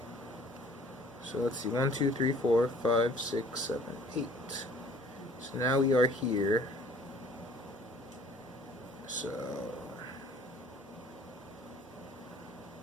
So let's see. 1, 2, 3, 4, 5, 6, 7, 8. So now we are here. So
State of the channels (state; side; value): normal; both; correlation 0.53